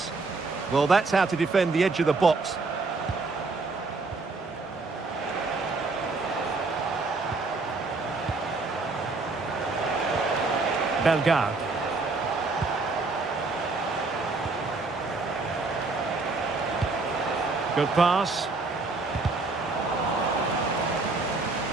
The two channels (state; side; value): quieter; left; 3.7 dB